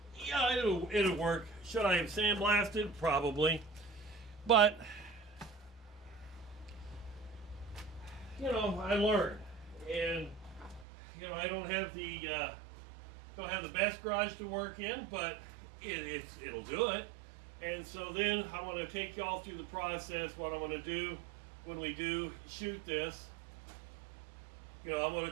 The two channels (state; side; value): drops out; left; at 10.9 s